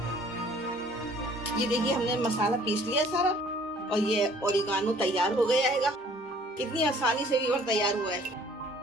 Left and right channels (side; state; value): both; normal; correlation 0.55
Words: ये देखिए हमने मसाला पीस लिया सारा और ये ओरिगानो तैयार हो गया है। कितनी आसानी से भी तैयार हुआ है।